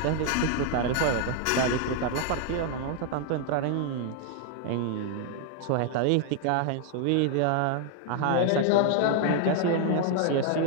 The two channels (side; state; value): both; different; correlation 0.00